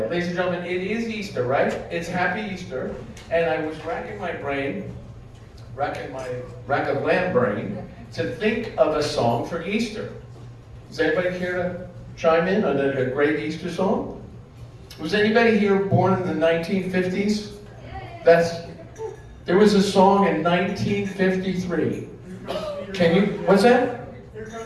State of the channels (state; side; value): identical; both; correlation 1.00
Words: Ladies and gentlemen, it is Easter, right? It's Happy Easter, and I was racking my rack of lamb brain to think of a song for Easter. Does anybody care to chime in on a great Easter song? Was anybody here born in the 1950s? There was a song in 1953. Can you, what's that? Here